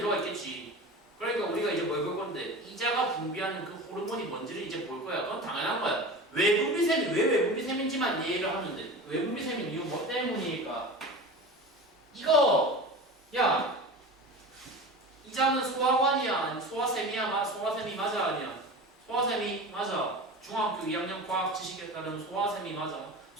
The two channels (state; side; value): normal; both; correlation 0.32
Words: 있겠지. 그러니까 우리가 이제 뭘 볼 건데 이자가 분비하는 그 호르몬이 뭔지를 이제 볼 거야. 그건 당연한 거야. 외분비샘이 왜 외분비샘인지만 이해를 하면 돼. 외분비샘인 이유 뭐 때문일까? 이거 야 이자는 소화관이야 소화샘이야? 소화샘이 맞아 아니야? 소화샘이 맞아. 중학교 2학년 과학 지식에 따르면 소화샘이 맞아.